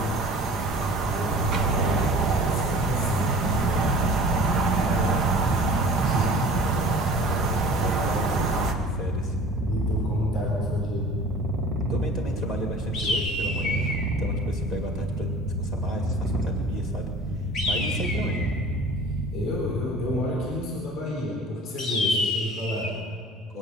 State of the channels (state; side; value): normal; both; correlation 0.44